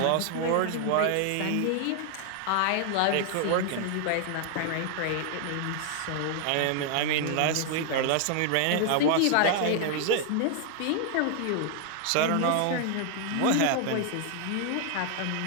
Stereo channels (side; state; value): both; different; correlation 0.00